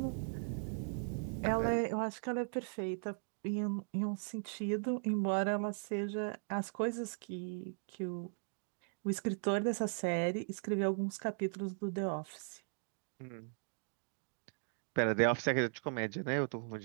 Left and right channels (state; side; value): silent; left; digital silence